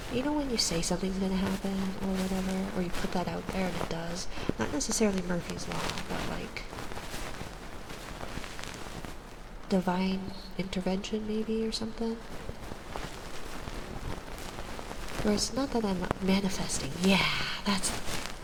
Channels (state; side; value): identical; both; correlation 1.00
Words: You know when you say something's gonna happen or whatever, or you put that out there and it does? Not necessarily Murphy's Law, but like divine intervention maybe or something? Or it's not that I'm manifesting. Yeah, that's